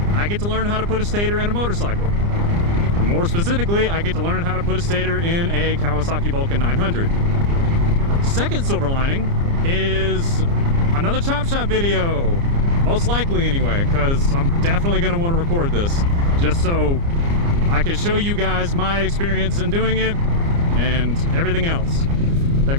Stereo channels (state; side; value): late; left; 29 ms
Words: I get to learn how to put a stator in a motorcycle. More specifically, I get to learn how to put a stator in a Kawasaki Vulcan 900. Second silver lining is another Chop Shop video. Most likely anyway, because I'm definitely going to want to record this just so I can show you guys my experience in doing it and everything else that